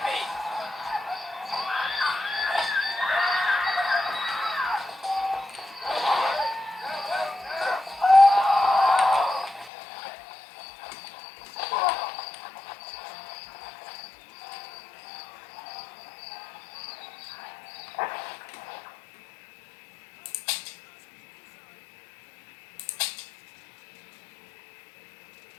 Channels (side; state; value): right; drops out; at 9.7 s